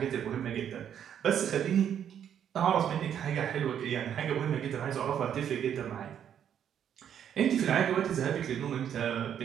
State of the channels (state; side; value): quieter; left; 9.2 dB